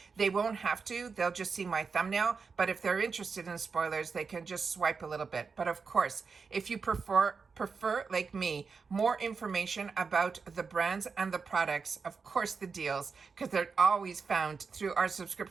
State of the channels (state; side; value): quieter; left; 5.1 dB